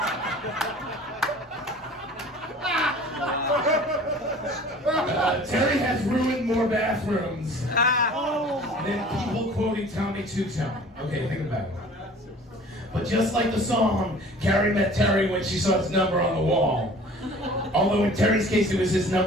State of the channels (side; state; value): both; normal; correlation 0.46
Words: Terry has ruined more bathrooms than people quoting Tommy Two-Tone. Okay, think about it. But just like the song, Carrie met Terry when she saw his number on the wall. Although in Terry's case, it was his